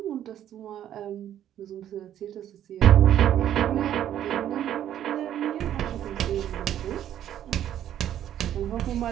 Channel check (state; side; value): quieter; left; 11.0 dB